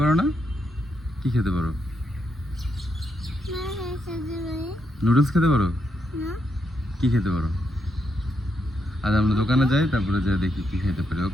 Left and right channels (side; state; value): both; normal; correlation 0.80